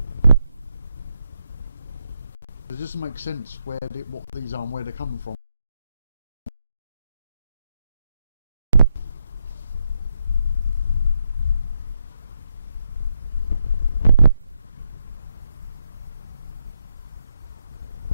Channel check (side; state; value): both; inverted; correlation -0.80